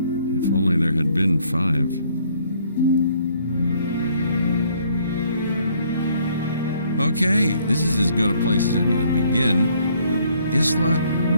there had been 5. Okay, this is as good a place as any to begin. Isla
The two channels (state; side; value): inverted; both; correlation -0.65